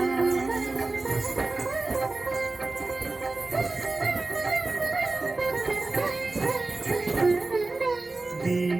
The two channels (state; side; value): quieter; left; 3.3 dB